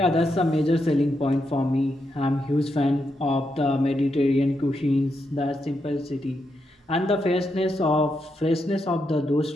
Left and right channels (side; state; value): both; normal; correlation 0.83